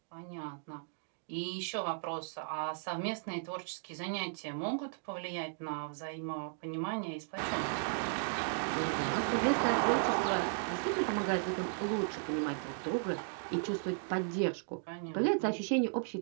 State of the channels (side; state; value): left; silent; digital silence